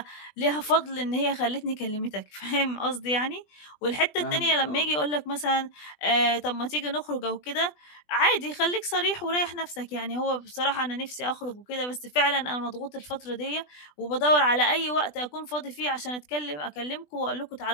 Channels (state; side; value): late; right; 20 ms